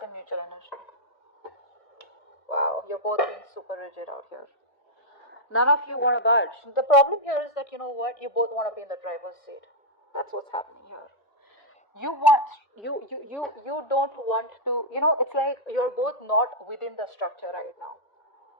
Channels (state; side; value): late; right; 1.0 ms